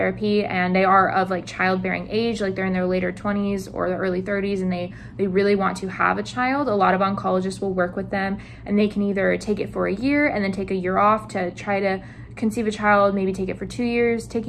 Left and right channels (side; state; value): both; identical; correlation 1.00